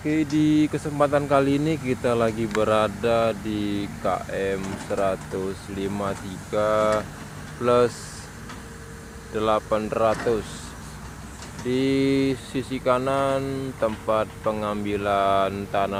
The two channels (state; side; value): identical; both; correlation 1.00